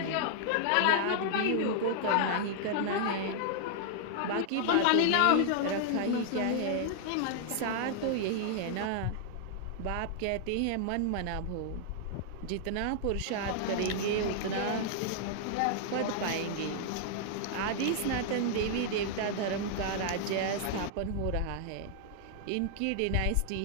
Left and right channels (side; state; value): both; different; correlation -0.01